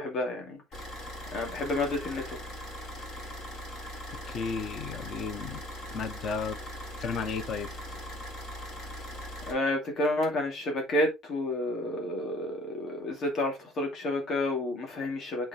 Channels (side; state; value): both; normal; correlation 0.53